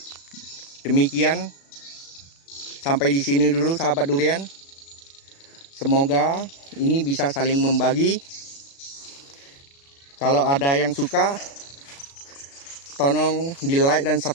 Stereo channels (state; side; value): late; right; 36 ms